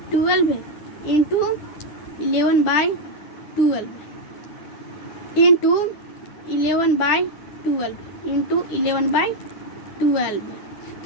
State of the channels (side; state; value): right; late; 9.9 ms